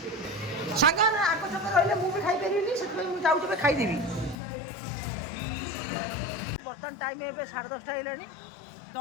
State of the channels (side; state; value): right; drops out; at 4.4 s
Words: सागर आग छक रही मुझे खाई पारि से जाऊँ खाईदेवी बर्तमान टाइम ए 10:30 है